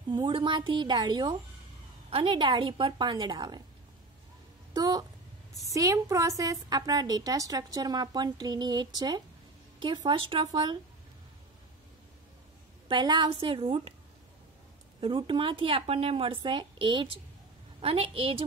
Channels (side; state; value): left; quieter; 3.3 dB